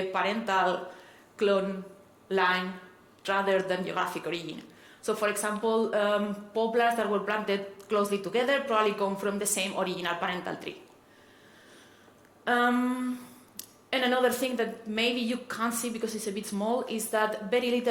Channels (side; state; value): both; identical; correlation 1.00